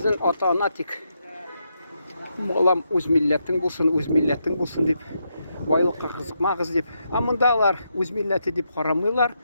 ата-ана тик балам үз милләтең булсын дип, байлыкка кызыкмагыз дип. Ә мондалар үз милләте дип карамыйлар,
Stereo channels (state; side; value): inverted; both; correlation -0.82